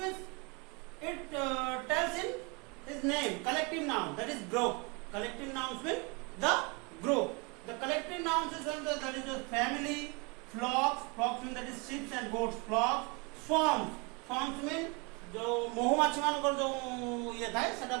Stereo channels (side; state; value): left; quieter; 30.3 dB